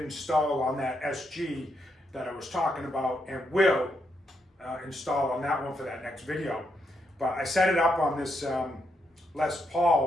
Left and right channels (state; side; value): normal; both; correlation 0.79